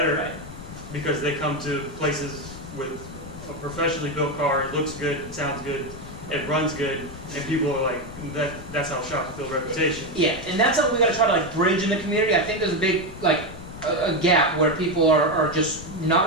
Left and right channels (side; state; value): left; noise; rumble, 14 dB below the sound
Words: Right. because they come to places with a professionally built car. It looks good, it sounds good, it runs good, and people are like, that's how shops build reputation. Yeah, and that's something we got to try to bridge in the community. I think there's a big a gap where people are just not